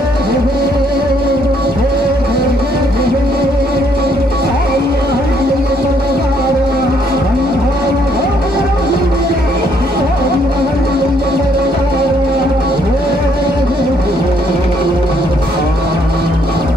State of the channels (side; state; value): both; normal; correlation 0.68